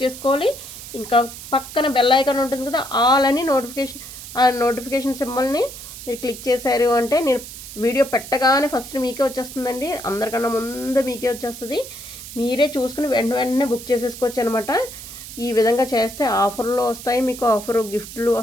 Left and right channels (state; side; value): noise; right; hiss, 13 dB below the sound